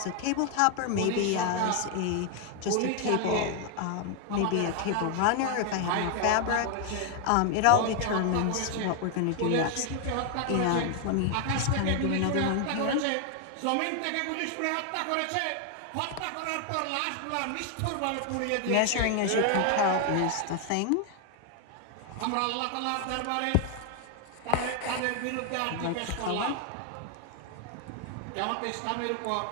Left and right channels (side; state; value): both; different; correlation 0.00